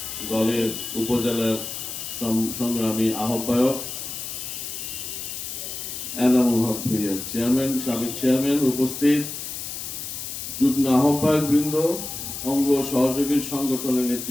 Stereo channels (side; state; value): left; noise; hiss, 7 dB below the sound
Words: দলের উপজেলার সংগ্রামী আহ্বায়ক এনামুল হক ভূঁইয়া চেয়ারম্যান, সাবেক চেয়ারম্যান, উপস্থিত যুগ্ম আহ্বায়ক বৃন্দ, অঙ্গ সহযোগী সংগঠনের